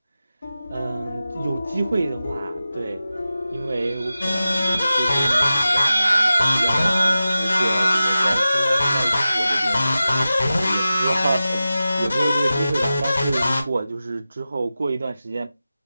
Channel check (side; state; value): both; inverted; correlation -0.93